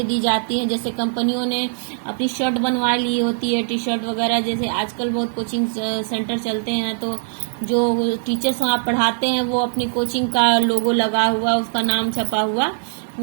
दी जाती हैं, जैसे कंपनियों ने अपनी शर्ट बनवा ली होती है, टी शर्ट वगैरह। जैसे आजकल बहुत कोचिंग सेंटर चलते हैं, तो जो टीचर्स वहाँ पढ़ाते हैं वो अपनी कोचिंग का लोगो लगा हुआ, उसका नाम छपा हुआ,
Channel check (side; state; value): left; silent; 65 dB below the other